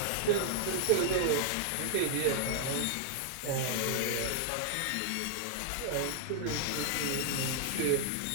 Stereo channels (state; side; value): different; both; correlation -0.01